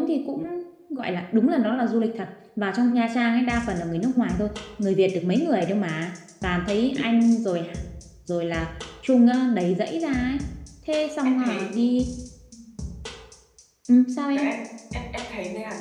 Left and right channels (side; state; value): both; identical; correlation 1.00